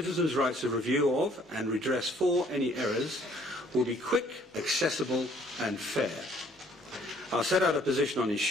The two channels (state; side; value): normal; both; correlation 0.61